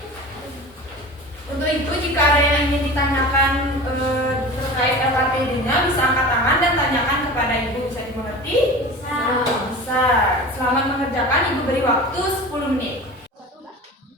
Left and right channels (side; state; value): both; normal; correlation 0.35